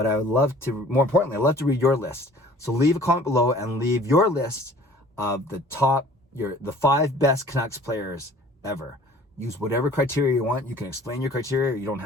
I would love to, more importantly, I'd love to read your list. So leave a comment below and leave your list of the 5 best Canucks players ever. Use whatever criteria you want. You can explain your criteria. You don't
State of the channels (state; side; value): normal; both; correlation 0.50